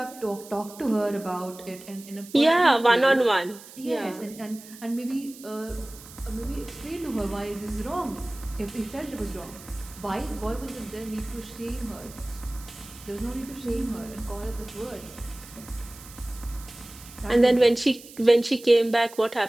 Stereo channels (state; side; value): noise; right; hiss, 18 dB below the sound